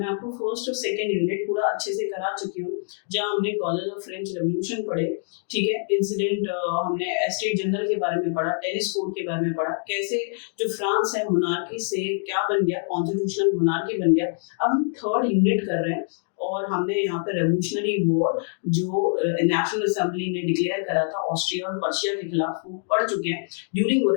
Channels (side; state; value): right; silent; 62 dB below the other